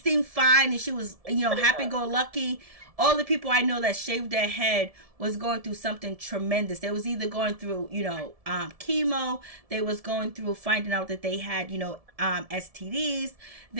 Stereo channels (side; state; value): left; late; 1.7 ms